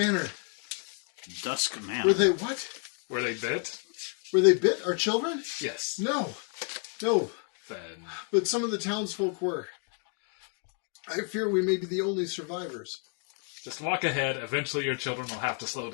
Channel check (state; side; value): quieter; right; 38.3 dB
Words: Dusk Man. Were they what? Were they bit? Were they bit? Our children? Yes. No. Then But some of the townsfolk were. I fear we may be the only survivors. just walk ahead. Eventually your children will have to slow